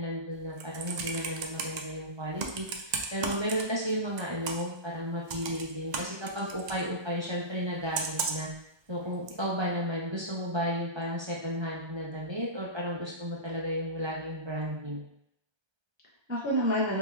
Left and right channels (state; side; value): late; left; 1.2 ms